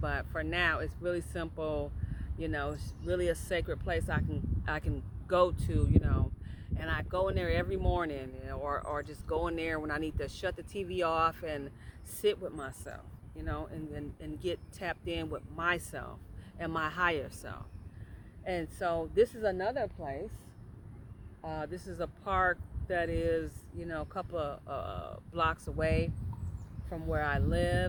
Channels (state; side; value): identical; both; correlation 1.00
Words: for now, it's really simple. It's really a sacred place I can go to, and I go in there every morning, or just go in there when I need to shut the TV off and sit with myself, and get tapped in with myself and my higher self. And so this is another place. This is a park that is, a couple of blocks away from where I